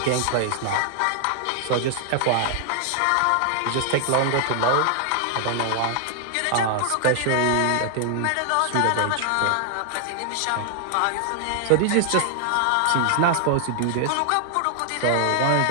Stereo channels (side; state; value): both; different; correlation 0.00